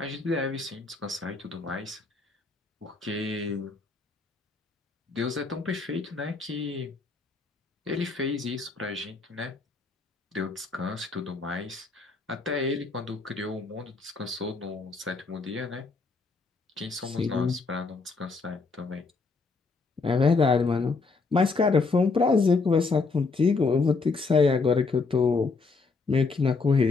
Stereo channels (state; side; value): quieter; right; 4.1 dB